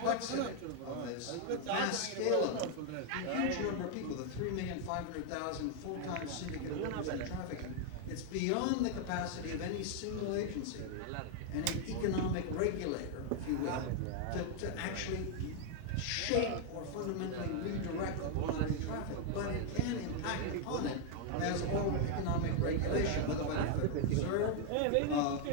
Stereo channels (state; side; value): different; both; correlation 0.00